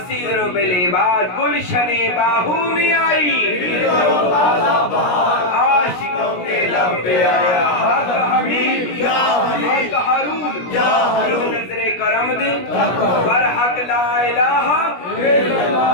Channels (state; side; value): late; right; 17 ms